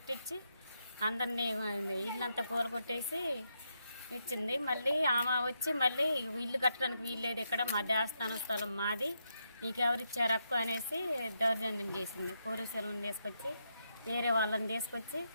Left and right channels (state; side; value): inverted; both; correlation -0.82